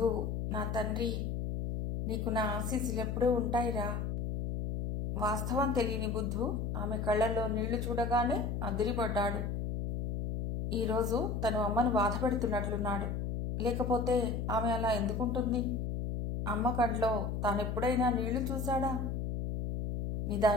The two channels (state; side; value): noise; left; hum, 2 dB below the sound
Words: నా తండ్రి, నీకు నా ఆశీస్సులెప్పుడూ ఉంటాయిరా. వాస్తవం తెలియని బుద్ధు ఆమె కళ్లలో నీళ్లు చూడగానే అదిరిపడ్డాడు. ఈరోజు తను అమ్మను బాధపెడుతున్నట్లున్నాడు. లేకపోతే ఆమె అలా ఎందుకుంటుంది? అమ్మ కంట్లో తానెప్పుడైనా నీళ్లు చూశాడా?